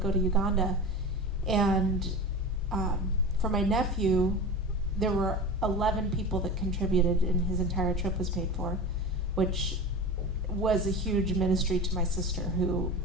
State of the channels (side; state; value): both; normal; correlation 0.30